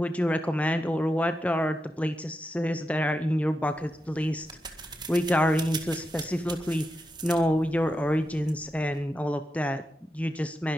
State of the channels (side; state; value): both; normal; correlation 0.87